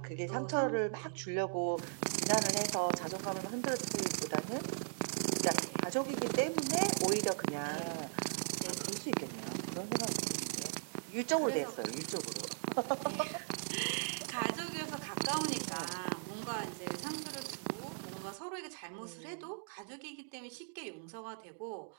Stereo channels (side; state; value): left; silent; digital silence